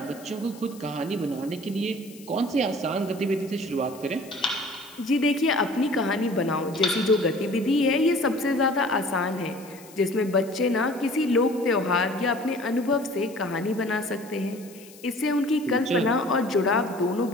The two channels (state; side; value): noise; left; hiss, 21 dB below the sound